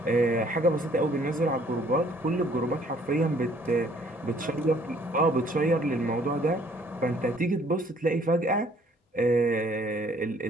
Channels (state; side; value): normal; both; correlation 0.60